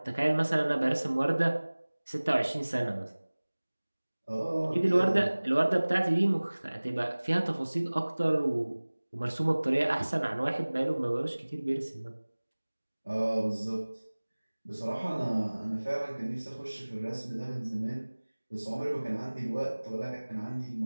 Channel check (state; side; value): inverted; both; correlation -1.00